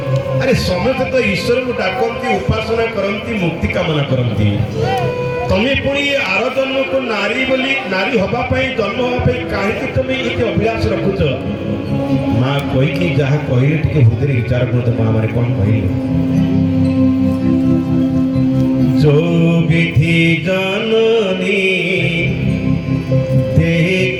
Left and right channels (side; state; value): both; identical; correlation 1.00